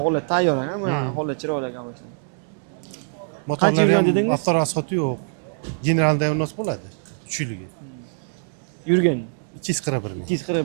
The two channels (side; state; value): left; silent; digital silence